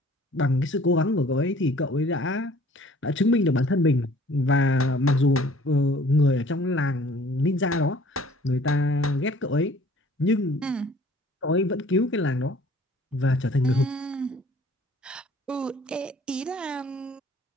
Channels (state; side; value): normal; both; correlation 0.53